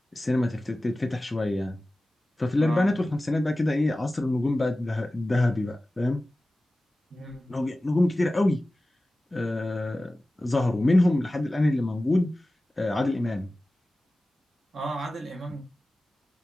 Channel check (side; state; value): both; normal; correlation 0.96